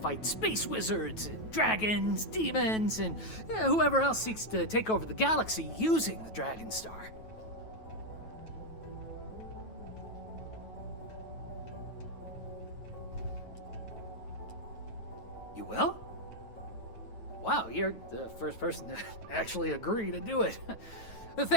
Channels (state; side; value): late; right; 9.2 ms